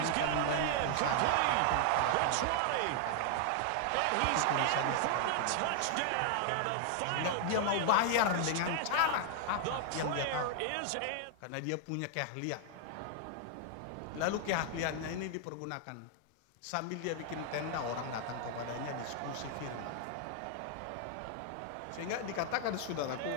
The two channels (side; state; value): both; different; correlation 0.00